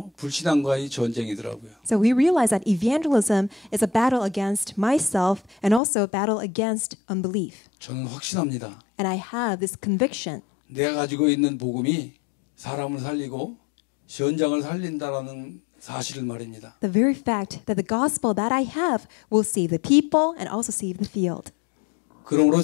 불신앙과의 전쟁이더라고요. So we realize that evangelism is a battle against myself and also a battle against unbelief. 저는 확신합니다. And I have this conviction 내가 가지고 있는 복음이 사람을 살리고 현장을 살린다라는 사실을 말입니다. the very fact that the gospel that I have will save the people and also save the field. 그러므로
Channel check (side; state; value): right; drops out; at 5.8 s